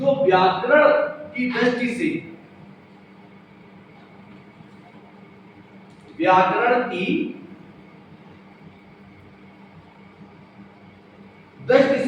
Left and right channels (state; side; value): identical; both; correlation 1.00